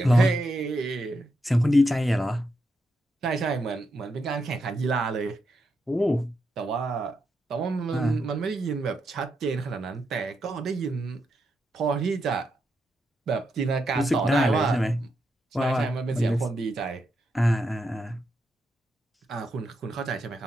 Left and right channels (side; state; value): both; normal; correlation 0.83